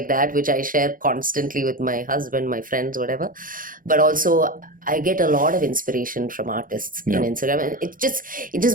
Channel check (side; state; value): left; late; 0.40 ms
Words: that, which I share constantly with my husband, my friends, whatever. But also, I get a lot of inspiration from artists in Instagram, and it